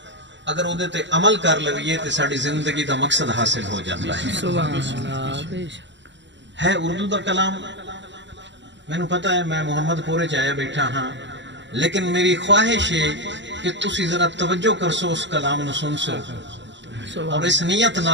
اگر اودے تے عمل کر لویے تے ساڈی زندگی دا مقصد حاصل ہو جاتا ہے۔ ہے اردو دا کلام، میں نو پتہ ہے میں محمد پورے چایا بیٹھا ہاں، لیکن میری خواہش ہے کہ تسی ذرا توجہ کرسو، اس کلام نو سن سو اور اس نیت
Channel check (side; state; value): left; late; 0.53 ms